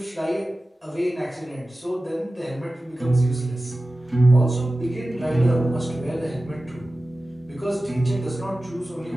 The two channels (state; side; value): normal; both; correlation 0.95